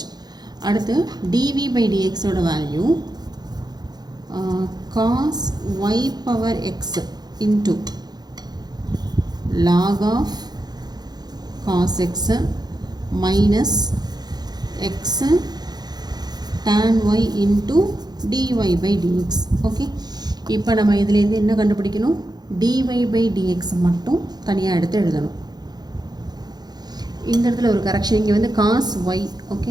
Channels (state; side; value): late; left; 0.20 ms